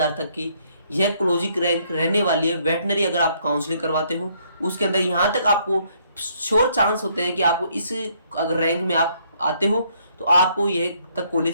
तक की यह क्लोजिंग रैंक रहने वाली है वेटनरी। अगर आप काउंसलिंग करवाते हो उसके अंदर यहाँ तक आपको श्योर चांस होते हैं कि आपको इस अगर रैंक में आप आते हो तो आपको यह तक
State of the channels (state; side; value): inverted; both; correlation -0.68